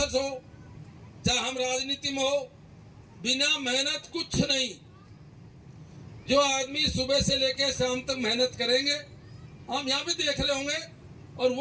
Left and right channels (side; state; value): both; identical; correlation 1.00